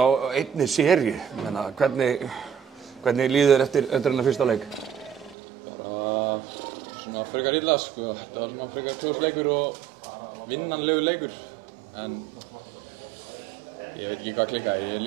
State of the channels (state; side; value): drops out; left; at 5.4 s